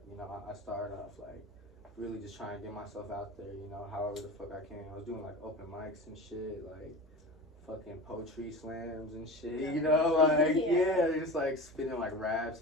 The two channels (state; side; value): normal; both; correlation 0.32